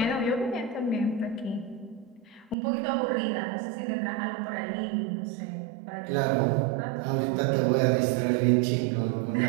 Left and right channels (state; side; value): drops out; left; at 2.6 s